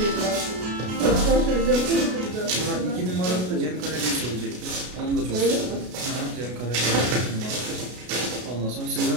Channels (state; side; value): late; left; 33 ms